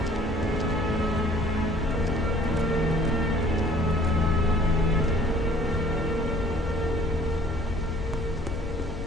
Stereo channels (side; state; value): both; normal; correlation 0.54